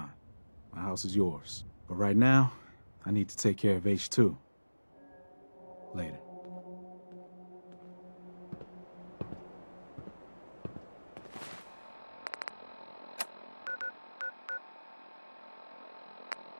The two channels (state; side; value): inverted; both; correlation -1.00